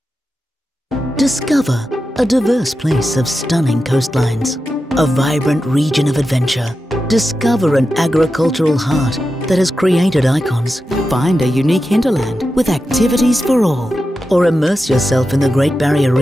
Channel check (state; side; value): normal; both; correlation 0.90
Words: Discover a diverse place of stunning coastlines, a vibrant region of adventure. Discover an agricultural heart that has created icons. Find a unique hinterland with activities for all. Or immerse yourself in the Great Barrier